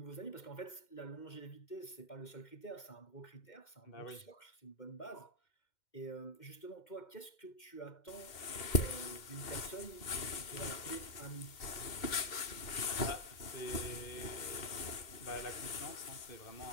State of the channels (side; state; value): right; late; 2.1 ms